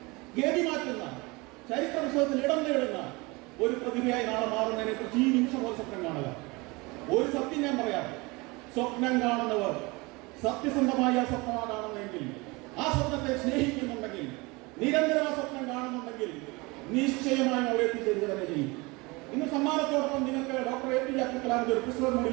ഗതി മാറ്റുന്ന, ചരിത്ര പുസ്തകത്തിൽ ഇടം നേടുന്ന ഒരു പ്രതിഭയായി നാളെ മാറുന്നതിനെ കുറിച്ച് ഈ നിമിഷം ഒരു സ്വപ്നം കാണുക. ഒരു സത്യം ഞാൻ പറയാം, സ്വപ്നം കാണുന്നവർ സത്യസന്ധമായ സ്വപ്നമാണ് കാണുന്നതെങ്കിൽ, ആ സ്വപ്നത്തെ സ്നേഹിക്കുന്നുണ്ടെങ്കിൽ, നിരന്തരം ആ സ്വപ്നം കാണുന്നുണ്ടെങ്കിൽ നിശ്ചയമായും അവിടെ എത്തിച്ചേരുക തന്നെ ചെയ്യും. ഇന്ന് സമ്മാനത്തോടൊപ്പം നിങ്ങൾക്ക് ഡോക്ടർ APJ അബ്ദുൽ കലാമിന്റെ ഒരു പുസ്തകം കൂടി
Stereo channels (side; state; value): left; quieter; 25.1 dB